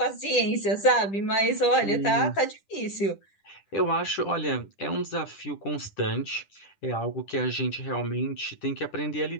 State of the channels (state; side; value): late; right; 10 ms